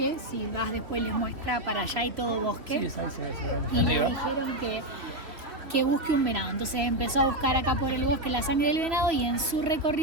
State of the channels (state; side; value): late; left; 3.1 ms